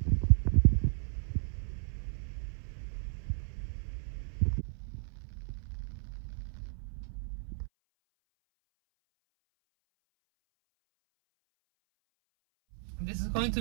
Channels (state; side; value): silent; left; 55 dB below the other